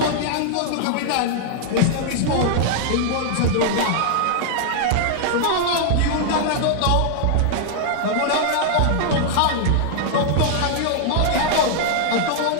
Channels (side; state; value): both; different; correlation -0.01